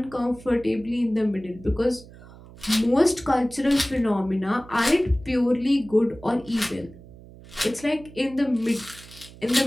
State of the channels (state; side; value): noise; right; hum, 20 dB below the sound